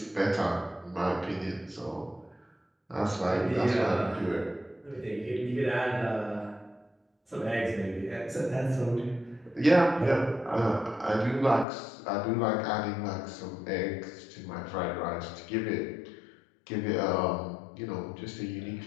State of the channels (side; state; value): right; drops out; at 11.7 s